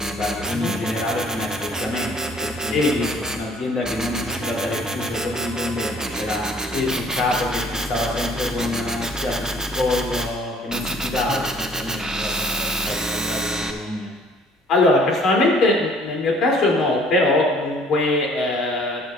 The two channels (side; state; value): both; normal; correlation 0.56